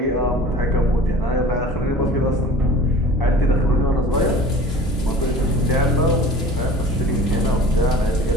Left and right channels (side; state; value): both; normal; correlation 0.43